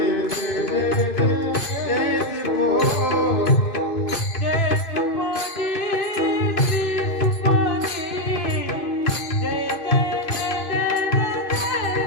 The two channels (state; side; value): late; right; 2.5 ms